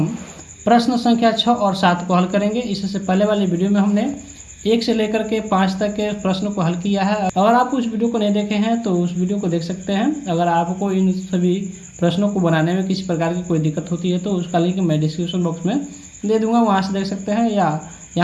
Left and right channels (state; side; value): identical; both; correlation 1.00